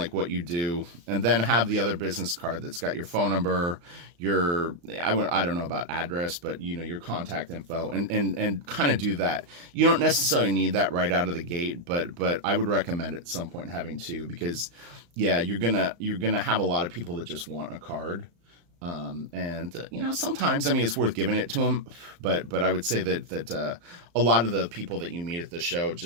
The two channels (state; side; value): late; left; 35 ms